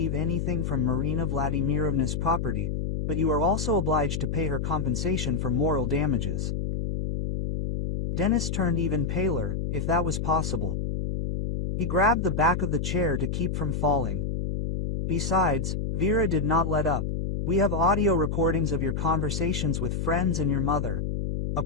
anything from Marina Vladimirovna's property, but you are also obliged to pay her compensation for moral damages. Denis turned even paler, if that was possible. He grabbed the back of the chair to keep from falling. Besides, Vera did not let up. We have audio recordings of your conversations with friends and your mother. A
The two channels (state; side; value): noise; left; hum, 1 dB below the sound